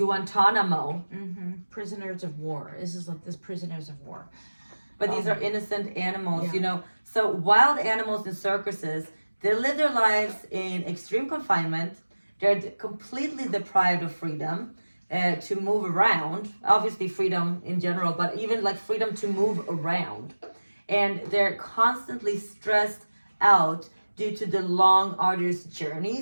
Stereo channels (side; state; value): both; inverted; correlation -1.00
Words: Prisoners of war. This is like prisoners of war. But these are innocent animals, So wild animals in circuses, they live their lives in extreme confinement. They're completely deprived of freedom to move around. Obviously freedom in general, but even like freedom to move around. And they're constantly stressed out due to the long, arduous